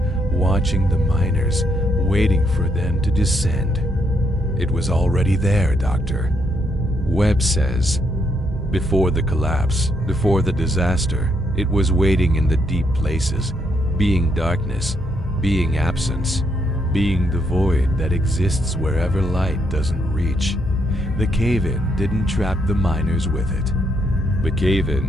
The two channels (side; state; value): both; normal; correlation 0.76